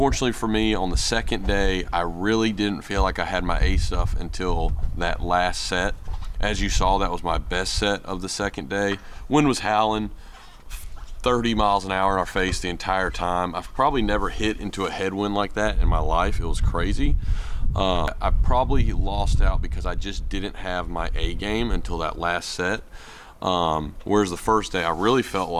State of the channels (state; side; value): identical; both; correlation 1.00